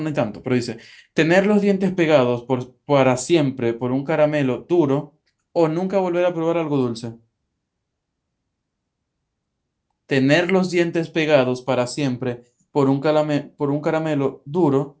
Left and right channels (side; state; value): both; identical; correlation 1.00